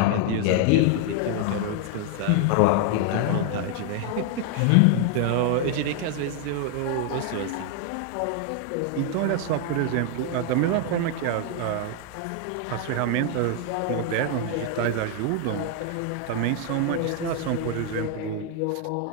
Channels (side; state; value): both; different; correlation 0.00